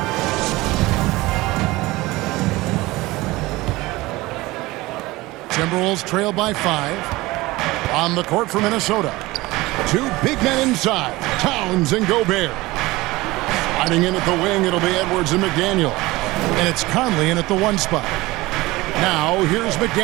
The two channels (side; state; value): left; quieter; 20.2 dB